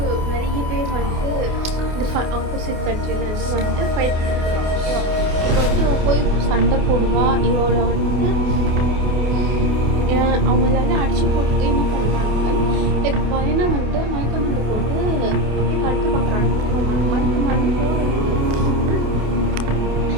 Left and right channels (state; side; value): late; left; 28 ms